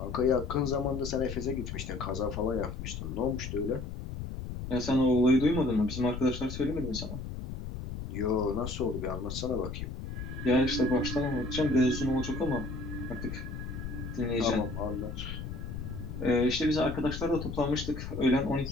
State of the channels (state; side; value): noise; left; rumble, 7 dB below the sound